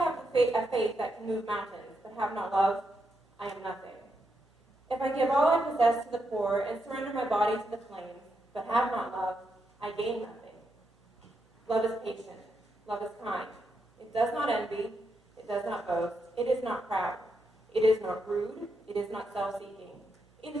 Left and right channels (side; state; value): both; normal; correlation 0.82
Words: have a faith that can move mountains, but have not love, I am nothing. If I give all I possess to the poor and surrender my body to the flames, but have not love, I gain nothing. Love is patient. Love is kind. It does not envy. It does not boast. It is not proud. It is not rude. It is not self-seeking. It